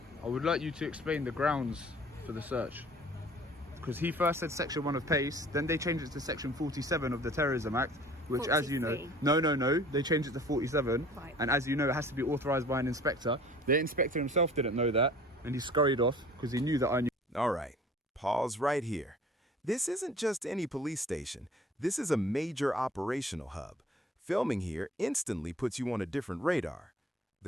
I would like you to explain the grounds for the search. Because he first said section 1 of PACE, then they changed it to section 47 of the Terrorism Act, which 43. as you know, no, they changed it to 47. Right. And as you know, it has to be authorised by an inspector. The inspector himself didn't know that, and he scurried off because he knew that I knew. All right, pause right here. This isn't just any police station. This is a major operational hub. Filming here instantly puts you on a different radar.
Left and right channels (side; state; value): both; normal; correlation 0.49